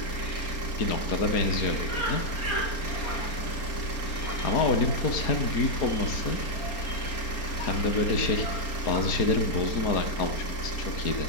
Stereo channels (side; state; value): right; late; 4.3 ms